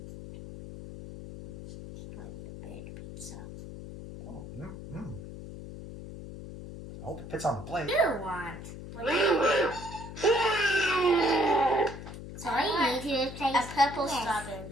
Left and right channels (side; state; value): left; noise; hum, 11 dB below the sound